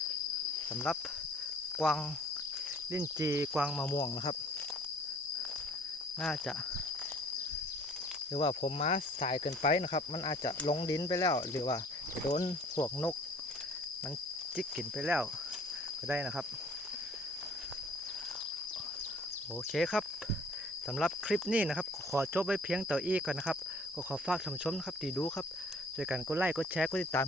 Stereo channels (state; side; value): normal; both; correlation 0.54